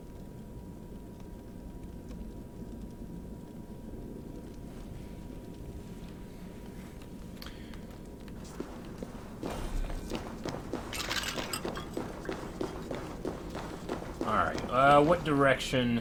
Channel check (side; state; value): both; identical; correlation 1.00